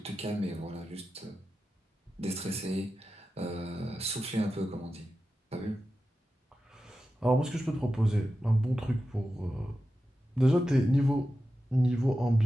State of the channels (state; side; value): normal; both; correlation 0.92